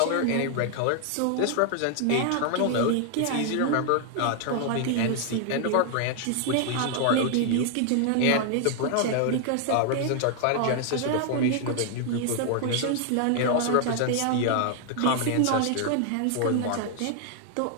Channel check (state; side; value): different; both; correlation 0.00